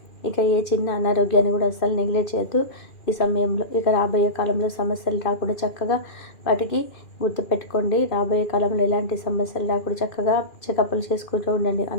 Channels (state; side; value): late; right; 2.4 ms